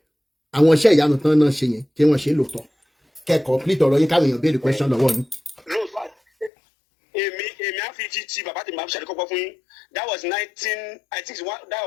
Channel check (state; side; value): drops out; right; at 6.5 s